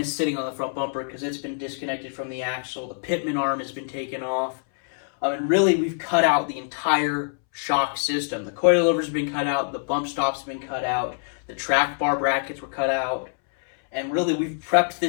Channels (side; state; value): right; silent; 62 dB below the other